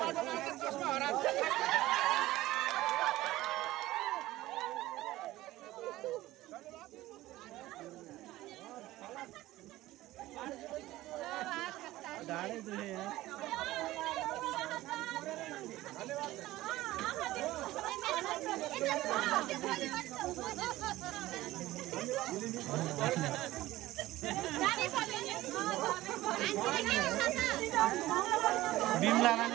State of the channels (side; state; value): left; quieter; 16.6 dB